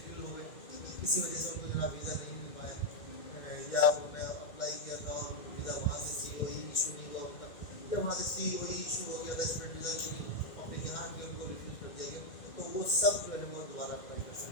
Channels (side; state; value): right; late; 2.1 ms